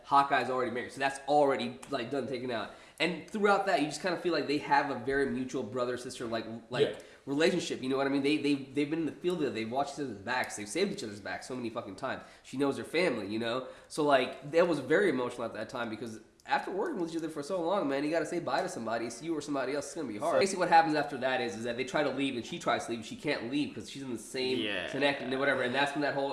Hawkeye's already married, so that's already like done taken out. And throughout that, you just kind of feel like they have a very mutual brother sister relationship. You know what I mean? They've been in the field together. They've watched each other's backs. They've saved each other's backs so many fucking times. She knows her family. You know, so like that was very emotional at that time because after working with each other for so long, man, you got to say bye to somebody. It's you or somebody else. It's gonna be hard. Basically, what happens after that is that they try to leave and she tries to leave. She can't leave because she's in the same connect and whatever. And that's when that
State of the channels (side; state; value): both; identical; correlation 1.00